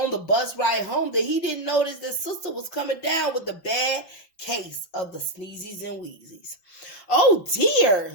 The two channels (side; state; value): right; late; 5.8 ms